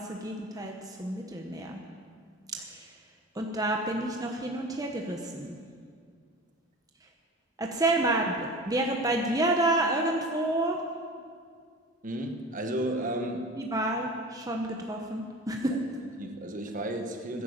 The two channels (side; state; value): both; normal; correlation 0.36